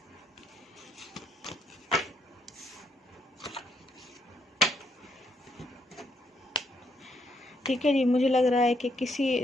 ठीक है जी। मुझे लग रहा है कि किसी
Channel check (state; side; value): normal; both; correlation 0.74